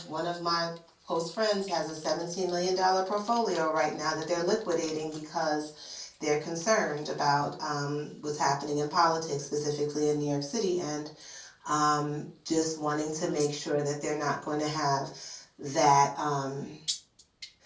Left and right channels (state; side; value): identical; both; correlation 1.00